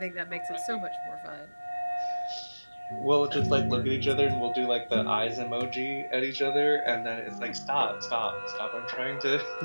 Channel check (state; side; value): inverted; both; correlation -1.00